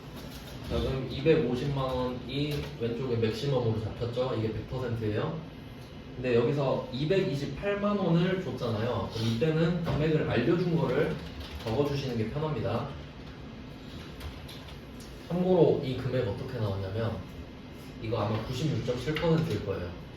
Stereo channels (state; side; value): identical; both; correlation 1.00